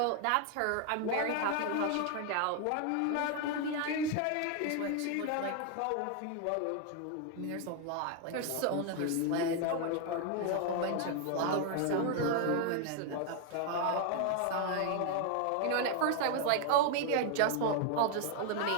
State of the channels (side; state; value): both; different; correlation 0.00